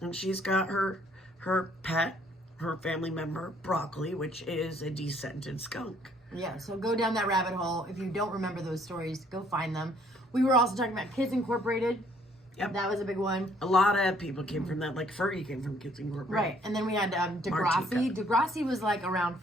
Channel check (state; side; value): normal; both; correlation 0.63